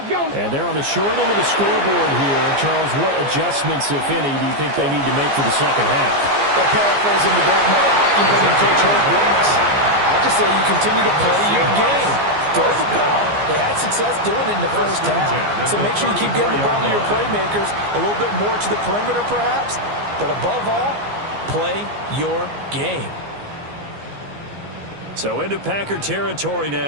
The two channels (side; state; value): left; late; 15 ms